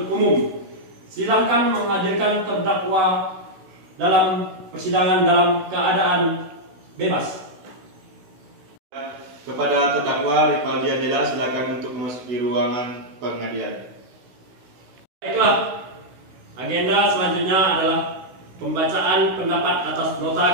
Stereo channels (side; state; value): left; late; 16 ms